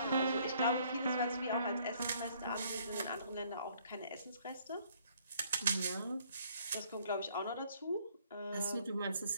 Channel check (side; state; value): both; inverted; correlation -0.63